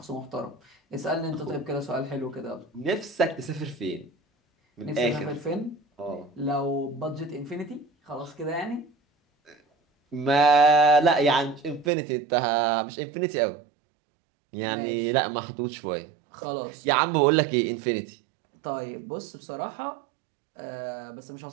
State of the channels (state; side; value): drops out; left; at 11.9 s